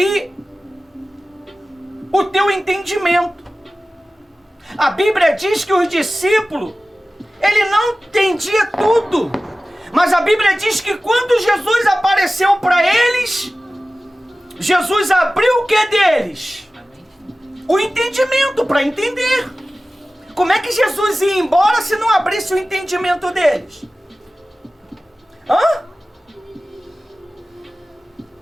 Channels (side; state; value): both; normal; correlation 0.96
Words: o teu entendimento. A Bíblia diz que os discípulos, ele não entendia tudo. Mas a Bíblia diz que quando Jesus apareceu para eles, Jesus abriu o que deles? O entendimento para entender. Como é que Jesus ia embora se não abrisse o entendimento deles?